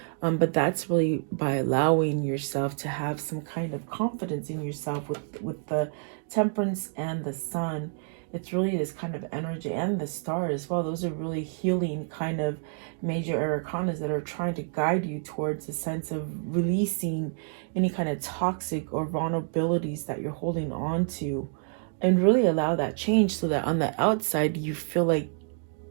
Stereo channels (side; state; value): left; silent; 58 dB below the other